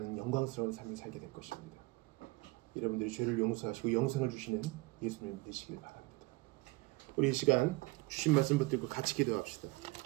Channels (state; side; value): quieter; left; 23.3 dB